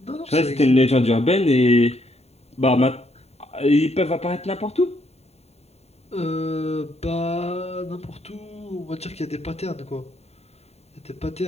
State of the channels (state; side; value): late; right; 0.30 ms